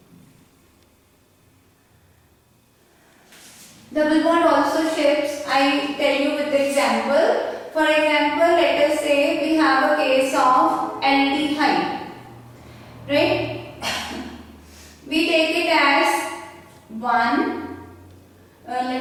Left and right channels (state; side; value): identical; both; correlation 1.00